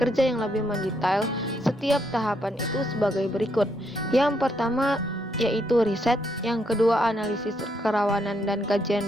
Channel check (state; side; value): normal; both; correlation 0.76